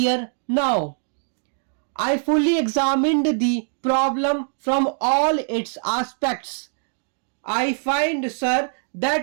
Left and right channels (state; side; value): silent; left; digital silence